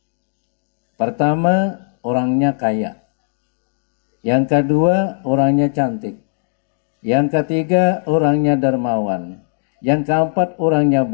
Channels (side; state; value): right; silent; digital silence